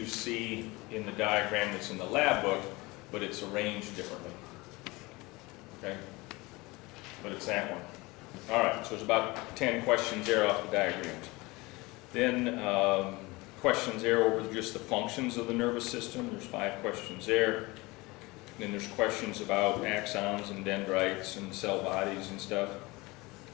see in the diagram that's in the lab book, but it's arranged differently. Okay? But it's that one. All right, so there's about 10 questions there off the diagrams. Then questions there over just the functions of the nervous system. There's 5 questions there. Then there's questions about axons and dendrites and cell bodies and stuff.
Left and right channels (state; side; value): quieter; right; 23.0 dB